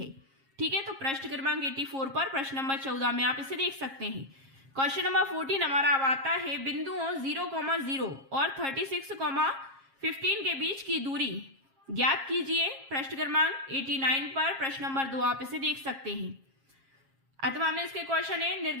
ठीक है, तो प्रश्न क्रमांक 84 पर प्रश्न नंबर 14 में आप इसे देख सकते हैं। क्वेश्चन नंबर 14 हमारा अब आता है, बिंदुओं 0,0 और 36,15 के बीच की दूरी ज्ञात कीजिए। प्रश्न क्रमांक 89 पर प्रश्न नंबर 2 आप इसे देख सकते हैं। अथवा में इसके क्वेश्चन है,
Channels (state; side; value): late; left; 7.4 ms